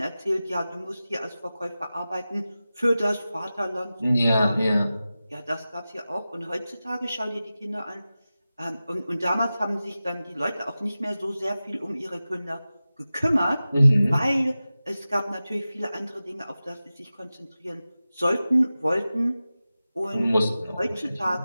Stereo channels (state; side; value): inverted; both; correlation -0.95